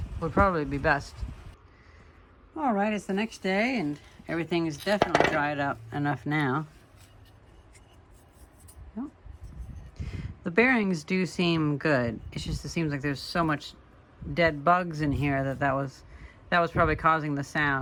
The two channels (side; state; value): both; identical; correlation 1.00